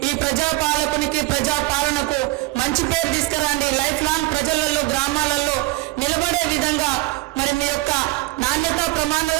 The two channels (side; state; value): left; quieter; 20.6 dB